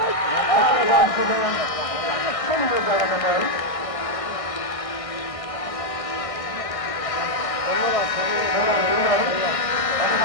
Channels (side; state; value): right; late; 1.6 ms